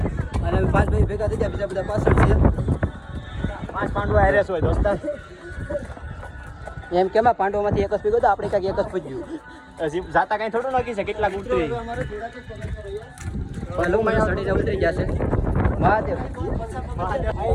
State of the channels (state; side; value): identical; both; correlation 1.00